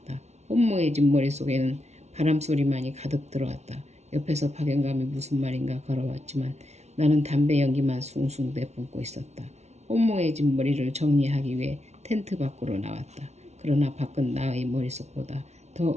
혼모해진 머릿속에는 바람소리만이 가득 들어왔다. 옆에서 박영감이 무슨 말인가 걸어왔지만 나는 담배 연기만 숭숭 내뿜고 있었다. 혼모해진 머리를 정리하기 위해 텐트 밖으로 나왔다. 그러나 밖은 나의 머릿속보다 더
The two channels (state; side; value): late; left; 0.32 ms